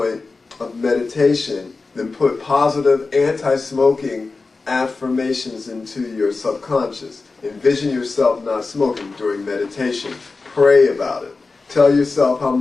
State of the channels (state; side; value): quieter; right; 3.9 dB